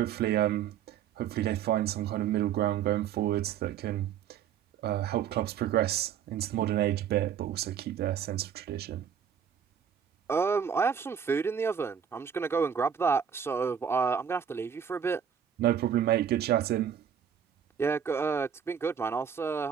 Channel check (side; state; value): left; quieter; 8.2 dB